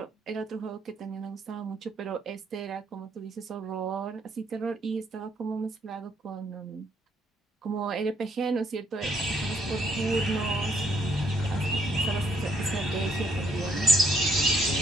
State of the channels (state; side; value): normal; both; correlation 0.68